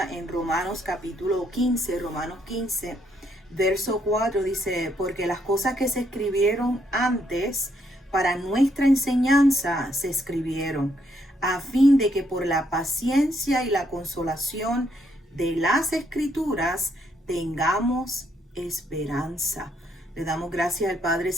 en Romanos capítulo 15, Romanos 15, verso 4, dice: porque las cosas que se escribieron antes para nuestra enseñanza se escribieron, a fin de que por la paciencia y la consolación de las escrituras tengamos esperanza. Le damos gracias al Padre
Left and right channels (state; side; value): normal; both; correlation 0.73